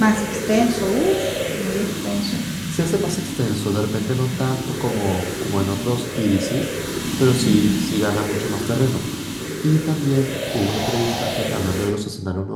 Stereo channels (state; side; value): identical; both; correlation 1.00